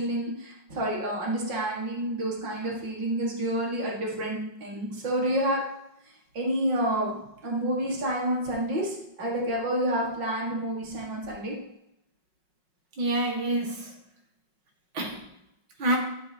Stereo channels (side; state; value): left; late; 5.4 ms